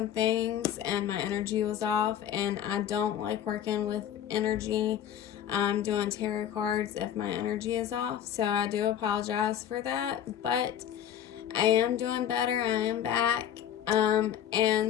things, and my energy was off, and I don't like working with energy. Doing tarot cards if my energy is off. So I do apologize for that, but I am doing better. I am back.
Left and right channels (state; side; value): quieter; right; 10.1 dB